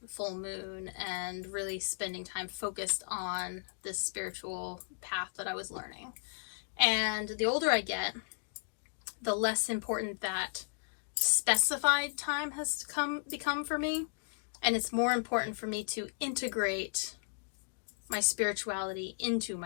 full moon and really spending time focused on this spiritual path that I was learning. And the older I get, the less important that specified time has become for me. And it's more important for me to integrate my spirituality into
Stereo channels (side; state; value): right; silent; digital silence